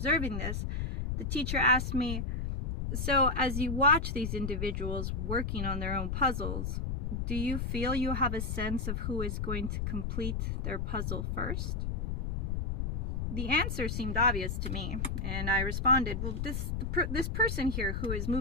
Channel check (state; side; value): noise; left; rumble, 1 dB below the sound